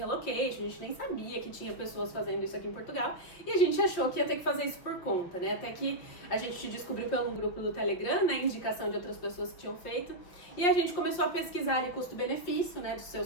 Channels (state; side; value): late; right; 5.5 ms